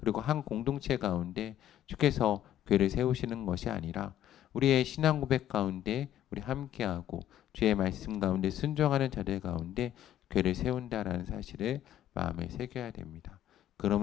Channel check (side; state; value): right; quieter; 11.5 dB